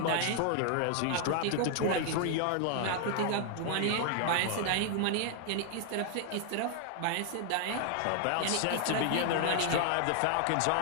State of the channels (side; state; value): both; different; correlation 0.00